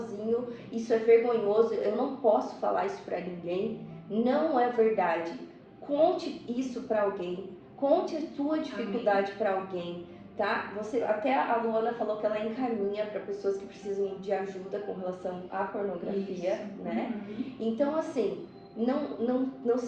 isso é vergonhoso, eu não posso falar isso para ninguém. Não é verdade. Conte isso para alguém. Conte a tua dificuldade para alguém. Tá? Até a Luana falou que ela encaminha para pessoas que precisam de ajuda com relação à pornografia, isso. Né? Então, assim, não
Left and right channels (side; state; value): both; identical; correlation 1.00